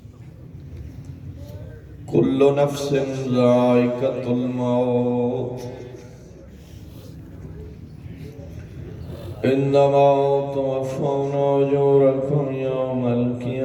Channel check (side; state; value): both; identical; correlation 1.00